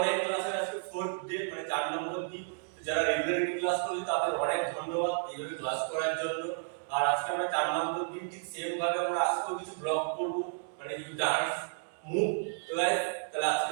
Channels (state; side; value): silent; left; digital silence